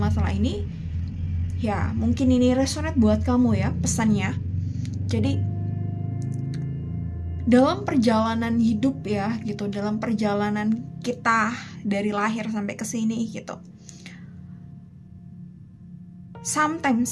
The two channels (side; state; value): both; identical; correlation 1.00